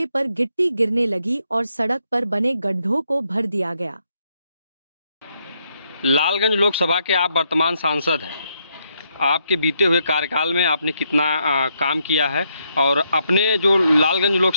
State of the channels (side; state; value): both; inverted; correlation -0.77